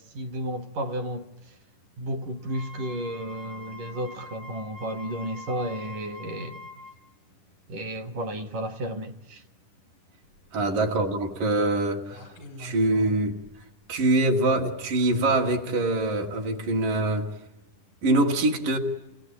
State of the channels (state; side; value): late; left; 10 ms